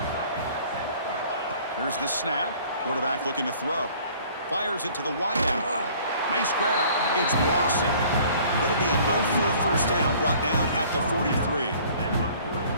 Here's the snap. Quarterback looking to throw. Fires it to the wideout. Nice grab. It's Lawson. It'll be enough for a first down, brought down at the 43.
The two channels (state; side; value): inverted; both; correlation -0.53